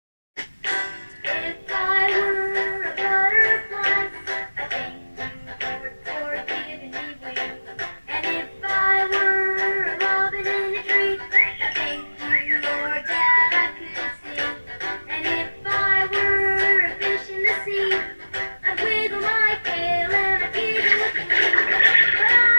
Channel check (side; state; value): both; inverted; correlation -1.00